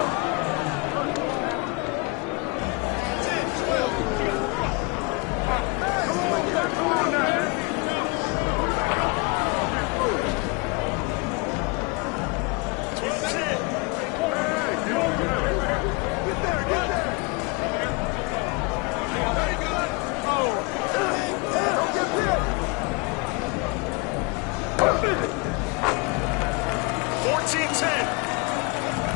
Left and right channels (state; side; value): quieter; right; 29.4 dB